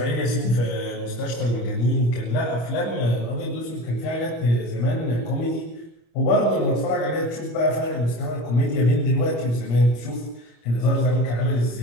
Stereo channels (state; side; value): late; right; 25 ms